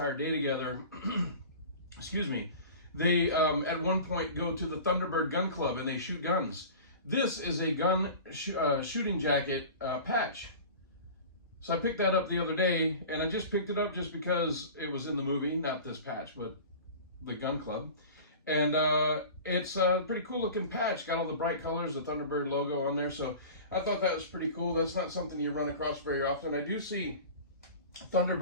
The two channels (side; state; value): both; inverted; correlation -0.37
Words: day together, excuse me, they at one point go to the Thunderbird Gun Club and they shoot guns. This is a gun shooting jacket patch. So I picked that up the other day, and I just picked it up just because it was in the movie, not this patch, but the gun club. And it's a pretty cool looking patch. Got all the bright colors, the Thunderbird logo on there. So I thought that was pretty cool. That's not something you run across very often. I do see